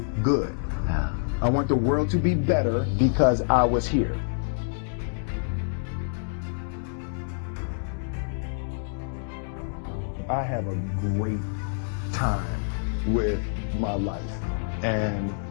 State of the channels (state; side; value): silent; right; digital silence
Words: good. I want the world to be better because I was here. I have a great time with my life, and